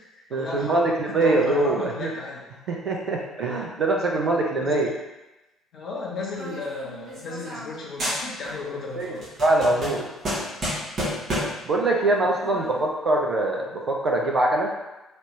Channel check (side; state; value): both; normal; correlation 0.58